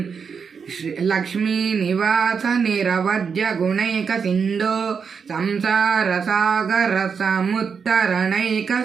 लक्ष्मीनिवास निरवध्य गुणैकसिन्धो संसारसागर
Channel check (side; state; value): left; quieter; 6.1 dB